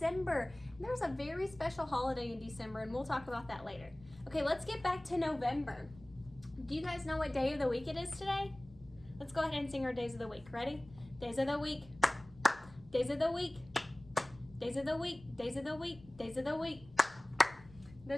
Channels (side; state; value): left; noise; rumble, 22 dB below the sound